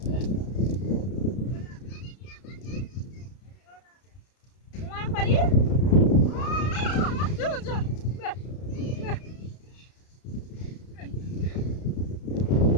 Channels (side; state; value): right; late; 32 ms